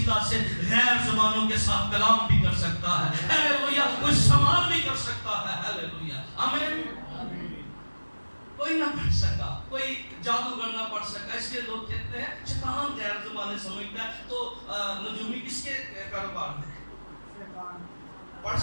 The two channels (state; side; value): inverted; both; correlation -1.00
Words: سے غیر زبانوں کے ساتھ کلام بھی کر سکتا ہے. ہیلیلویا. کوئی سوال بھی کر سکتا ہے. ہیلیلویا, آمین. کوئی نہ پڑھ سکا, کوئی جادوگر نہ پڑھ سکا. اس لیے لوگ کہتے ہیں شیطان غیر زبانیں سمجھتا ہے, تو نجومی کس کے کاروبار میں پڑھ